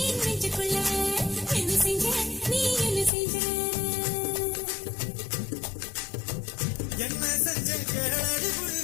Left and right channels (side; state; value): right; drops out; at 3.1 s